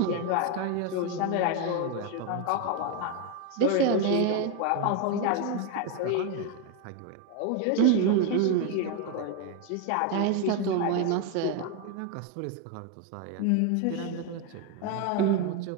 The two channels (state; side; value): different; both; correlation 0.01